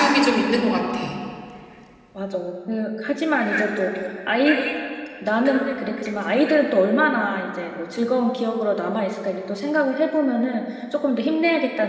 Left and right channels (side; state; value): both; identical; correlation 1.00